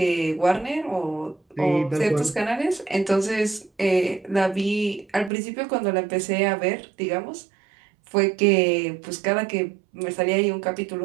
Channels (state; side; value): drops out; left; at 5.3 s